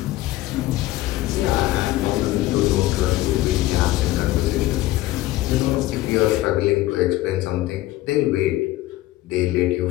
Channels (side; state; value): right; quieter; 16.5 dB